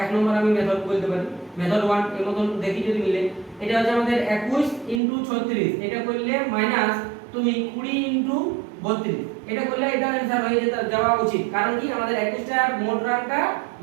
এক নম্বর আমি মেথড বলতে পারি, মেথড 1 এর মতন দেখি যদি মিলে। এটা হচ্ছে আমাদের 21 ইনটু 36, এটা করলে মাইনাস তুমি 20 ইনটু 32, এটা করলে এটা आंसर হয়ে যেতে যাওয়া উচিত, কারণ কি আমাদের 21টার মোট রানটা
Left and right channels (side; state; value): left; drops out; at 5.0 s